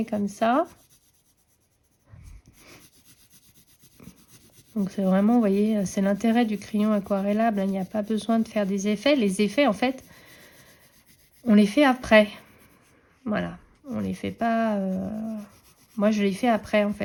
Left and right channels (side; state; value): both; identical; correlation 1.00